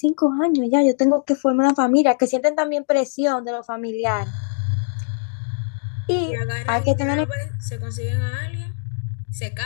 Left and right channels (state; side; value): silent; right; digital silence